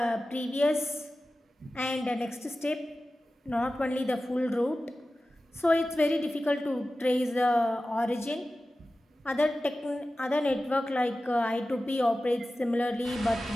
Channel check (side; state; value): both; normal; correlation 0.95